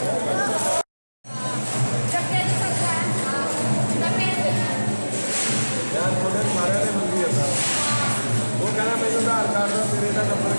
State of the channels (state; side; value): inverted; both; correlation -1.00